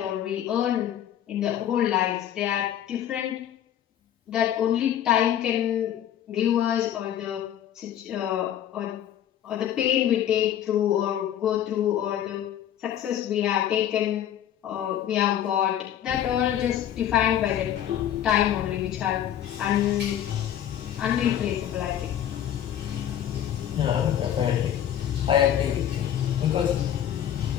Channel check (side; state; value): right; quieter; 10.6 dB